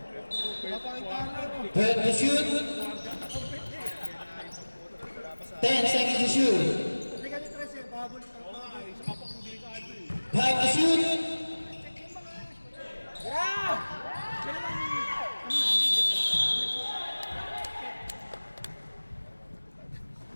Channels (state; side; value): inverted; both; correlation -1.00